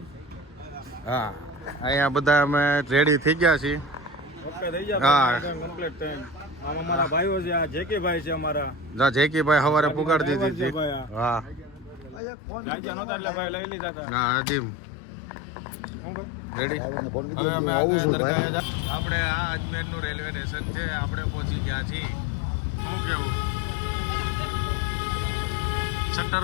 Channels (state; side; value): drops out; right; at 12.2 s